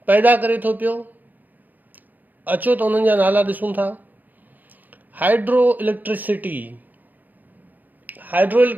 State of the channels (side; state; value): left; late; 0.084 ms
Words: पैदा करे थो पियो। अचो त उन्हनि जा नाला ॾिसूं था। Hydro electricity. हाइड्रो